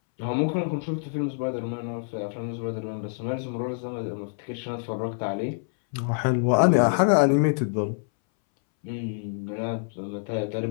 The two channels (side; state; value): right; silent; 61 dB below the other